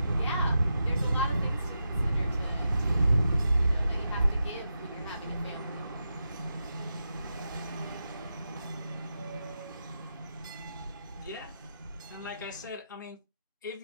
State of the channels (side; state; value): both; inverted; correlation -0.87